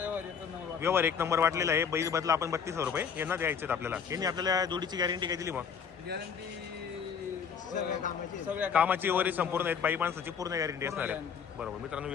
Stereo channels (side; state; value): right; quieter; 6.8 dB